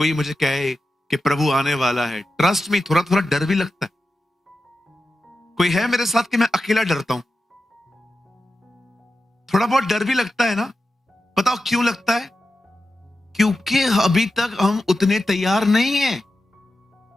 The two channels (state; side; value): normal; both; correlation 0.92